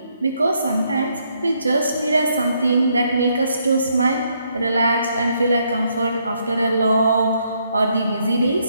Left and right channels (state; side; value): inverted; both; correlation -0.74